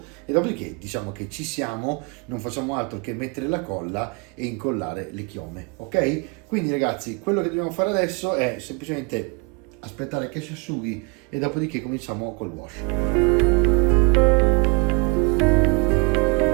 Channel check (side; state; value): left; quieter; 31.8 dB